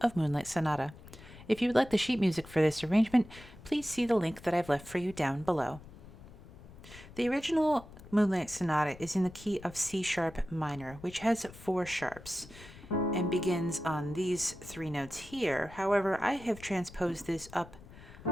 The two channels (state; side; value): noise; left; rumble, 18 dB below the sound